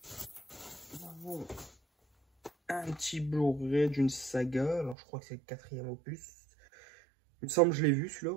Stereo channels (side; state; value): left; drops out; at 5.0 s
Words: avons un petit Blu-ray d'une saga. Alors, je crois que c'est le 4e opus. Il me semble que je l'ai vu